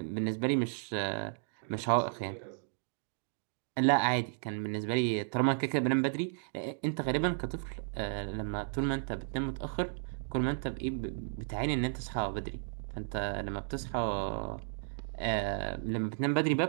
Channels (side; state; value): left; silent; digital silence